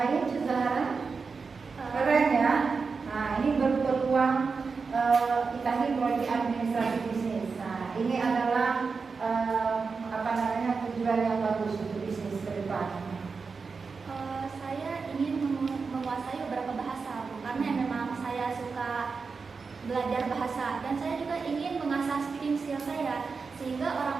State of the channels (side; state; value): left; quieter; 4.9 dB